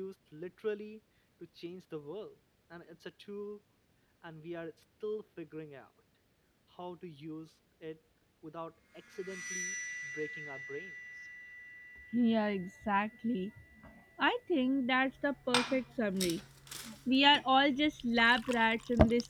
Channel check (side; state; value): both; identical; correlation 1.00